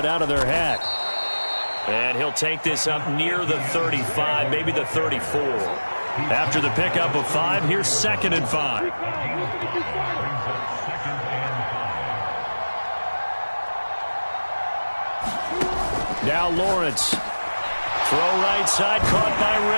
out of their hat. And he'll take this up near the 35, maybe the 34. After the pickup of 5, here's 2nd and 5. Now Lawrence. Throw right side, caught by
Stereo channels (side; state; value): both; inverted; correlation -1.00